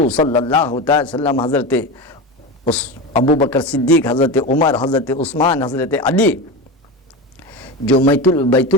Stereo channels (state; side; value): normal; both; correlation 0.23